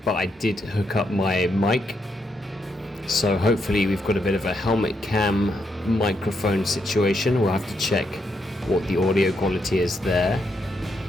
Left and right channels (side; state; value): both; normal; correlation 0.80